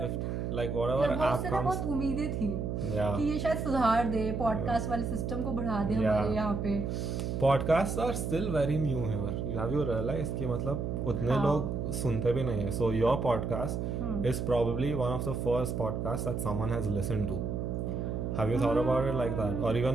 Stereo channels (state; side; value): noise; right; hum, 2 dB below the sound